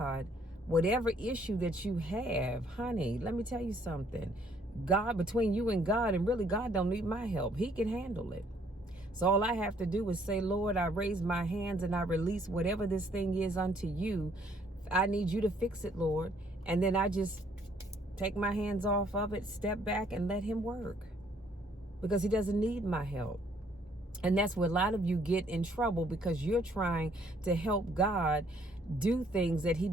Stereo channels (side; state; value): both; normal; correlation 0.65